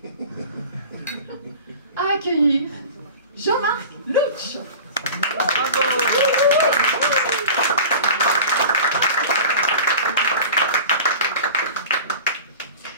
à accueillir Jean-Marc Louch.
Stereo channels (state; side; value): inverted; both; correlation -0.38